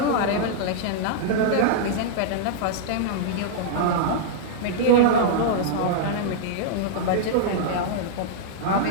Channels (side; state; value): both; different; correlation -0.02